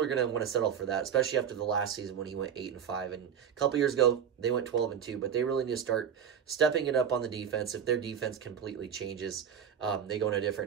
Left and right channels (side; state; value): left; quieter; 8.1 dB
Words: are going to want to settle for that, especially after the last season when he went 8-5. And a couple years ago, they went 12-2. But they really need to start stepping it up on the defense. If their defense completely changes, they go in a